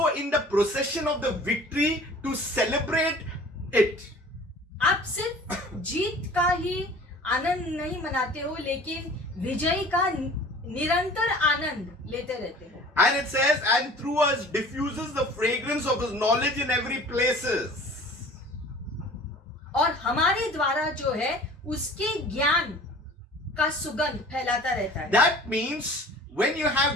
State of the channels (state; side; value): normal; both; correlation 0.45